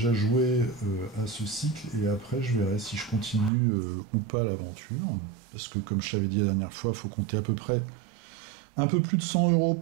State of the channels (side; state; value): left; drops out; at 3.5 s